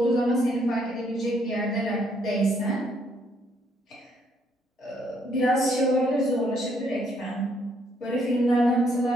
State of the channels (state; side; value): normal; both; correlation 0.70